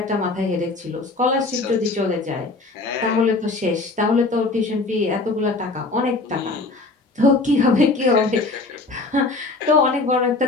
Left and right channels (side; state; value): right; quieter; 3.4 dB